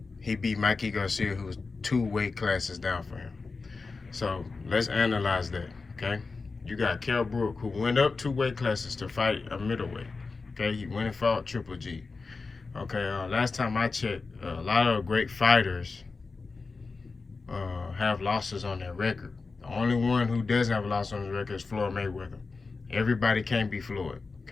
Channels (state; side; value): quieter; right; 4.2 dB